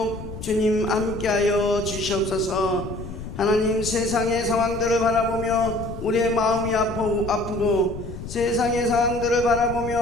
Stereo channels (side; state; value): left; noise; rumble, 10 dB below the sound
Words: 주님 함께하여 주시옵소서. 하나님, 세상의 상황들을 바라보며 우리의 마음이 아프고 세상의 상황들을